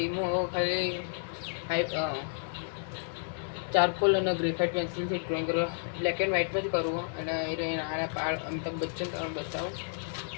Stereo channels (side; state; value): right; silent; digital silence